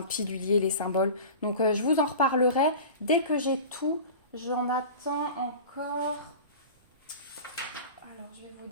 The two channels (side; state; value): both; inverted; correlation -0.35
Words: pilulier les symboles. Donc je vous en reparlerai dès que j'ai tout. J'en attends encore. Alors, je vais vous